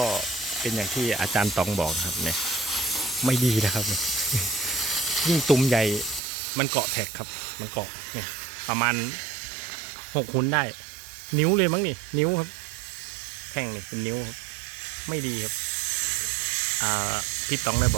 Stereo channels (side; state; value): left; drops out; at 6.2 s